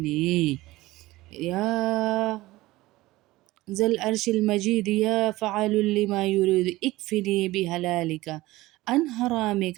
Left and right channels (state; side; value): quieter; left; 18.6 dB